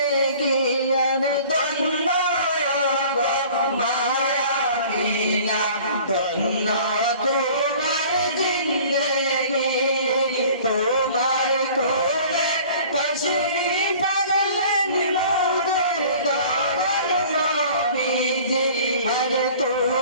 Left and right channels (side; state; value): both; inverted; correlation -0.48